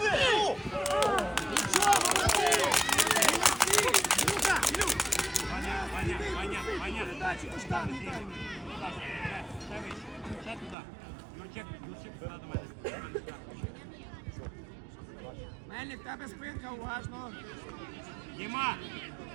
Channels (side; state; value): left; drops out; at 10.8 s